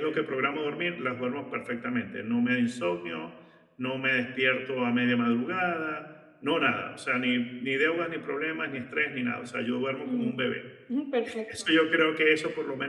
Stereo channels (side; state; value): both; identical; correlation 1.00